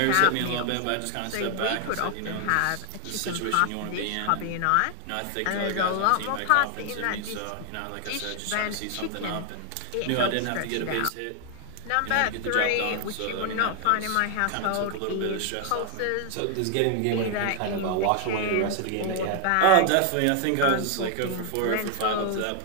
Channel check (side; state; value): both; different; correlation 0.00